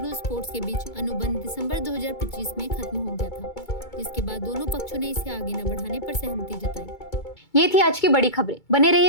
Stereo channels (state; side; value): late; right; 2.3 ms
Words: स्पोर्ट्स के बीच अनुबंध दिसंबर 2025 में खत्म हो गया था, जिसके बाद दोनों पक्षों ने इसे आगे न बढ़ाने पर सहमति जताई। ये थी आज की बड़ी खबरें। बने